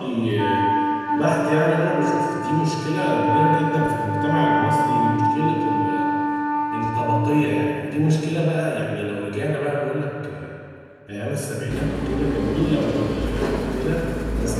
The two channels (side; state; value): both; identical; correlation 1.00